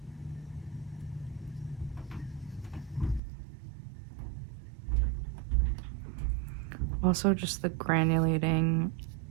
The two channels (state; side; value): drops out; left; at 3.2 s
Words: Also, just the granulating